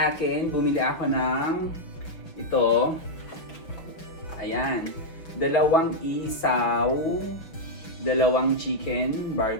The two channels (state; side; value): late; right; 6.0 ms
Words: akin, bumili ako ng ito. Ayan. Dalawang isaw, dalawang chicken